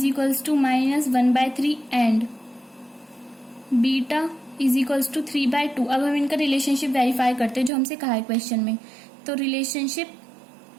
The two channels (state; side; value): drops out; left; at 7.7 s